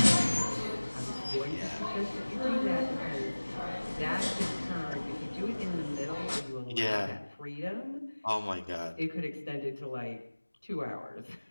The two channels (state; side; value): inverted; both; correlation -1.00